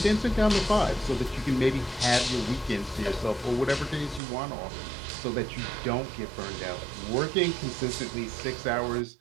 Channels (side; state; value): left; drops out; at 4.2 s